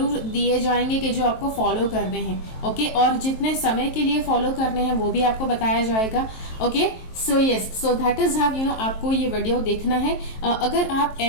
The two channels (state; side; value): late; right; 23 ms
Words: दिए जाएंगे कि जो आपको फॉलो करने हैं। ओके, और जितने समय के लिए फॉलो करने हैं वो भी आपको बताया जाएगा। Okay, so yes, so that is how आपको ये वीडियो देखना है। अगर आप